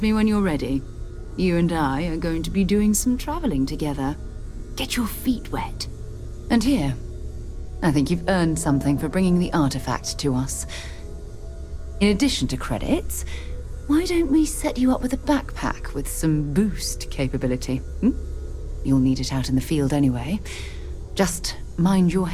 me when you're ready. You and I are going to be doing some traveling together. Get your feet wet. And here, I think you've earned something for bringing the artifact to us. In addition to credits, why don't we set you up with a backpack with some boost capability? You'll need it out in the field anyway. Just mind your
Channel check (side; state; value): both; identical; correlation 1.00